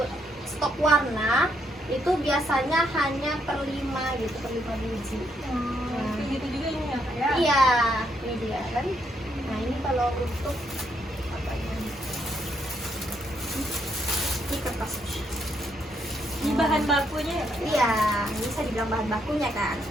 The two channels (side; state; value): both; normal; correlation 0.75